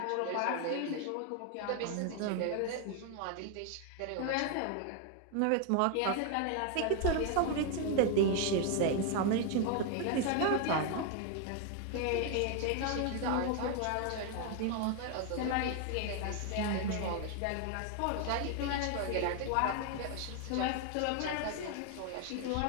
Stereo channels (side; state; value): both; different; correlation 0.01